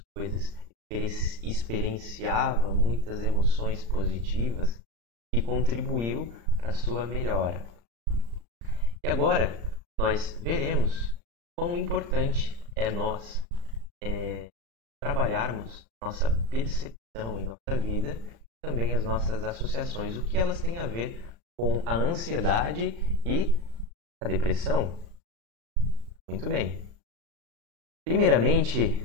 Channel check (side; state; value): left; late; 35 ms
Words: coisas, experienciava muitas emoções positivas que contribuiu para a sua melhora. E agora nós veremos quão importante é nós trabalharmos nossa percepção em nossa vida, também as nossas associações, o que elas têm a ver com a ansiedade e a depressão. Muito bem. Primeiramente,